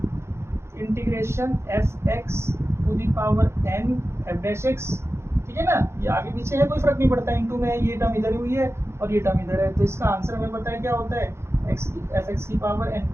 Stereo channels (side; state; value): left; late; 0.13 ms